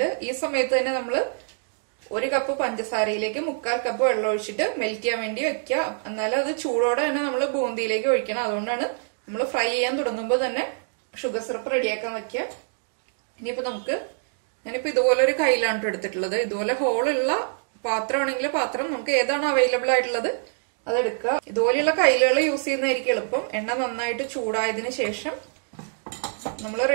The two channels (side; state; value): left; silent; digital silence